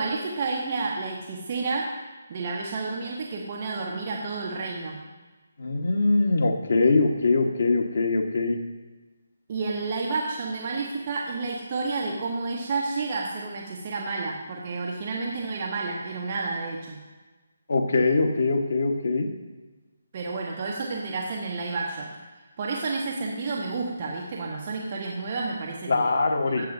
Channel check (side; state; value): both; inverted; correlation -0.82